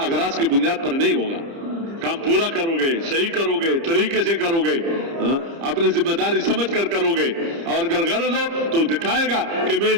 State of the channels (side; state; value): left; late; 30 ms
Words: اغراض کی بنیاد پر نہیں ہوگا. کام پورا کرو گے, صحیح کرو گے, طریقے سے کرو گے, اپنی ذمہ داری سمجھ کر کرو گے. اور اگر غرض ہو تو دکھائے گا کہ میں